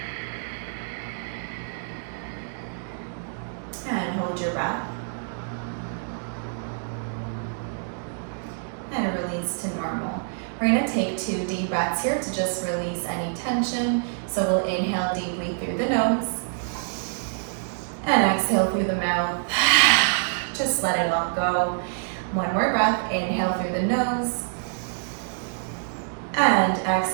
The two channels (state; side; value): silent; left; digital silence